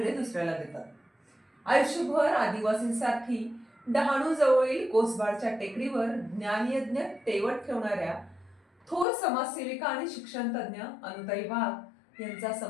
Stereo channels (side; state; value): right; drops out; at 9.1 s